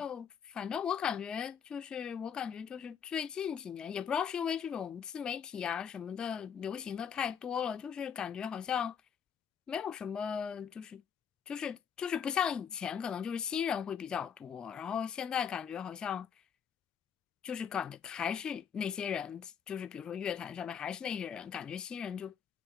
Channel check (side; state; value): right; quieter; 7.6 dB